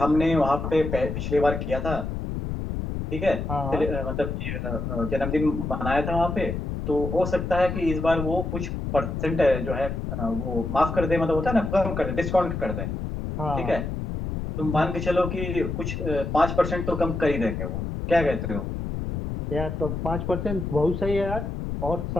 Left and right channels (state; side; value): noise; left; rumble, 4 dB below the sound